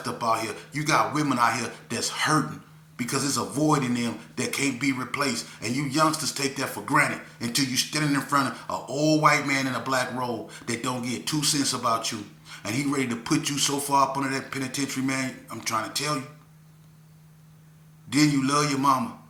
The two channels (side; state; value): both; identical; correlation 1.00